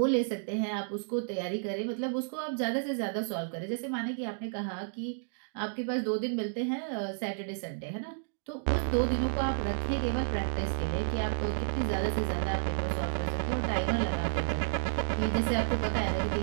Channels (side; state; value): left; silent; digital silence